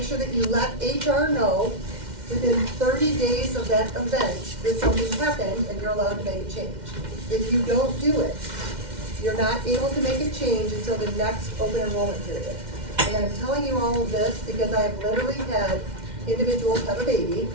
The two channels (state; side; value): late; left; 2.1 ms